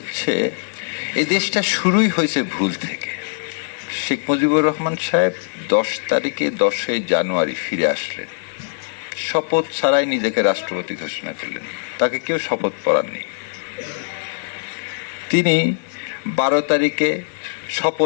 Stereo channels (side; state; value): right; silent; digital silence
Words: এই দেশটা শুরুই হয়েছে ভুল থেকে। শেখ মুজিবুর রহমান সাহেব 10 তারিখে 10 জানুয়ারি ফিরে আসলেন, শপথ ছাড়াই নিজেকে রাষ্ট্রপতি ঘোষণা করলেন, তাকে কেউ শপথ পড়াননি। তিনি 12 তারিখে